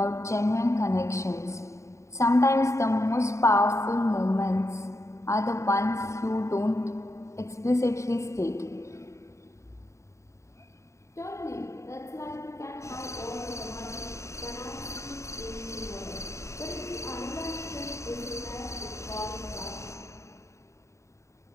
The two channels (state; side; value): late; right; 0.14 ms